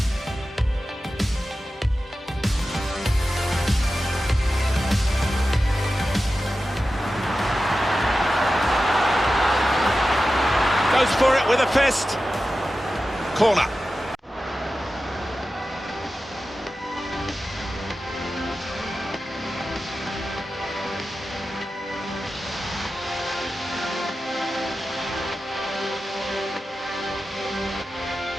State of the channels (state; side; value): normal; both; correlation 0.93